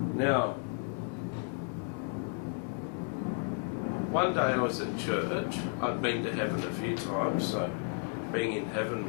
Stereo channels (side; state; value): right; quieter; 36.5 dB